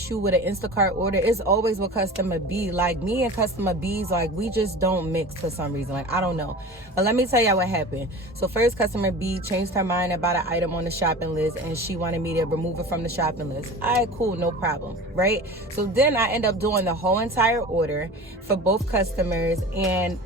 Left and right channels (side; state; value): both; normal; correlation 0.36